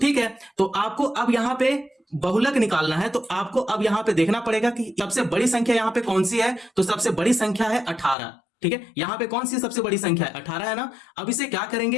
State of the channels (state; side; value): drops out; right; at 8.2 s